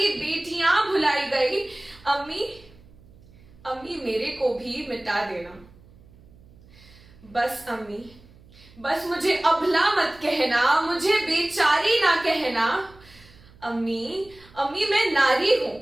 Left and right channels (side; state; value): right; noise; hum, 25 dB below the sound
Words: बेटियां भुलाई गई। अम्मी, अम्मी मेरे को भी मिटा देना। बस अम्मी, बस मुझे अबला मत कहना, मुझे बेचारी ना कहना। अम्मी, अम्मी मैं नारी हूं।